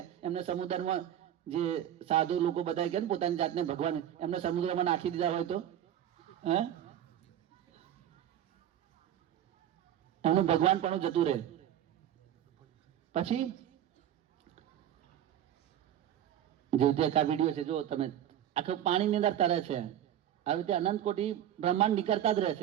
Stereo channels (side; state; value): left; quieter; 10.9 dB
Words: એમને સમુદ્રમાં, જે સાધુ લોકો બધા કે પોતાની જાતને ભગવાન, એમને સમુદ્રમાં નાખી દીધા હોય તો એમનું ભગવાન પણ જતું રહે. પછી જે રીતે આ વિડીયો છે, જો તમે, આખું પાણીની અંદર તરે છે. આવી રીતે અનંત કોટી બ્રહ્માંડ નીકળતા જ રહે